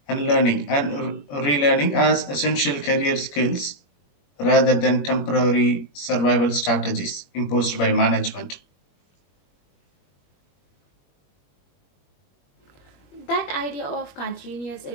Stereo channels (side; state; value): right; late; 21 ms